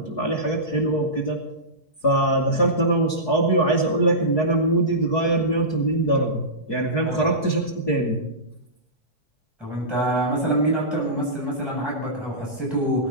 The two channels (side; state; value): right; late; 4.7 ms